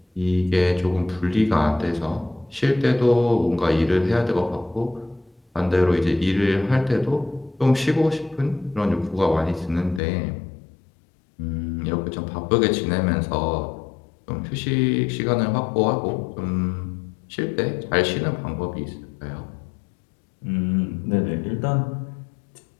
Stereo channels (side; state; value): right; drops out; at 10.0 s